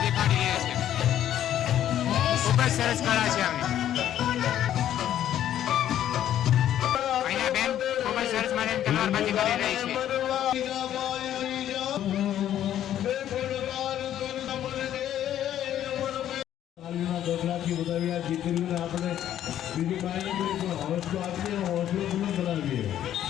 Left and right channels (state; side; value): quieter; right; 11.3 dB